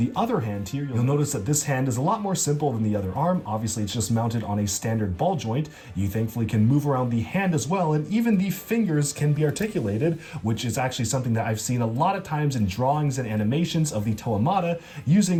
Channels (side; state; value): both; identical; correlation 1.00